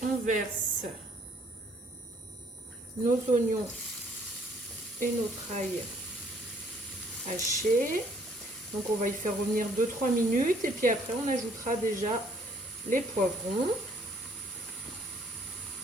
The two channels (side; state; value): both; normal; correlation 0.63